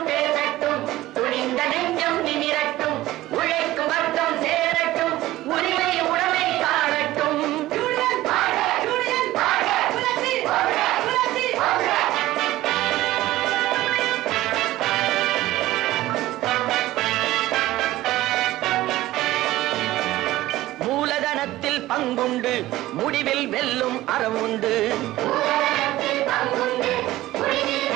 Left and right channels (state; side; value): quieter; left; 16.3 dB